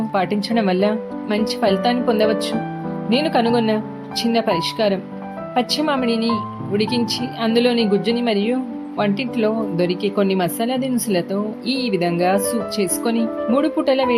పాటించడం వల్ల మంచి ఫలితాన్ని పొందవచ్చు. నేను కనుగొన్న చిన్న పరిష్కారం: పచ్చి మామిడిని ఉడికించి అందులోని గుజ్జుని మరియు వంటింట్లో దొరికే కొన్ని మసాలా దినుసులతో ఈ విధంగా సూప్ చేసుకొని 3 పూటల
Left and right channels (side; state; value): both; identical; correlation 1.00